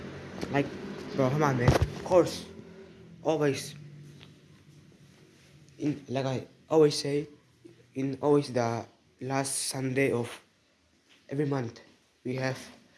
like, bro, come on, man. Of course, always like I always say, in always the last Sunday of every month we have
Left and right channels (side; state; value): both; identical; correlation 1.00